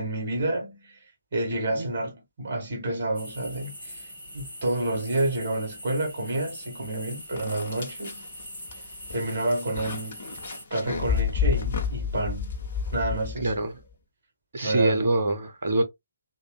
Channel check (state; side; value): inverted; both; correlation -0.60